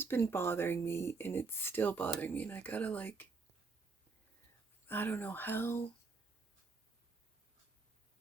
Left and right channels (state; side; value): quieter; left; 4.3 dB